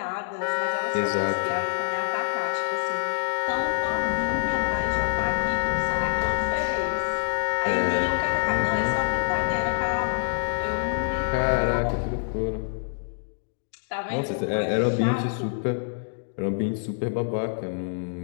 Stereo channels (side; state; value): right; silent; 61 dB below the other